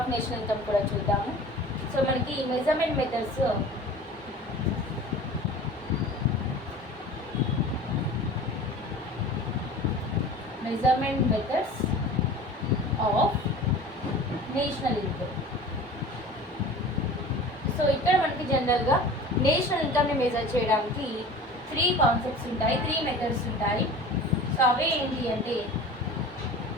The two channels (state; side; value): normal; both; correlation 0.39